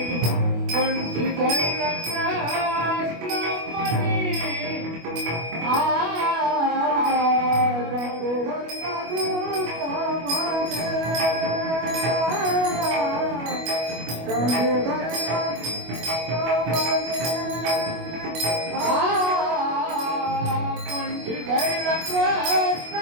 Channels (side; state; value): left; late; 25 ms